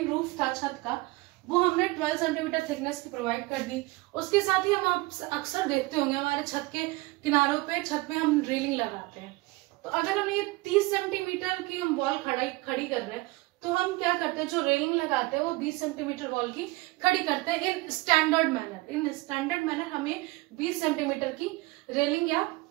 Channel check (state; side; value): quieter; left; 22.2 dB